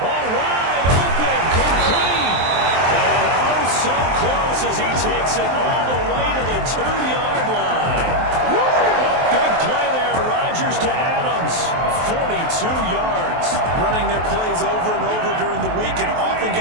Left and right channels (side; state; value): left; late; 23 ms